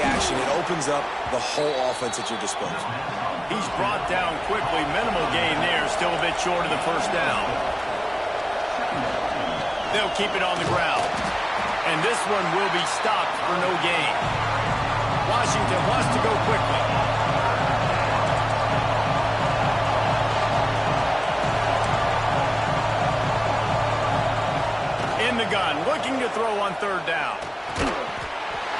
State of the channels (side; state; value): both; identical; correlation 1.00